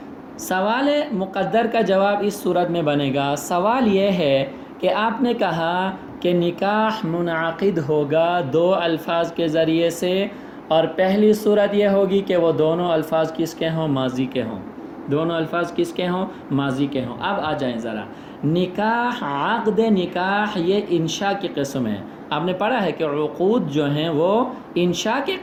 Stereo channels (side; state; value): both; identical; correlation 1.00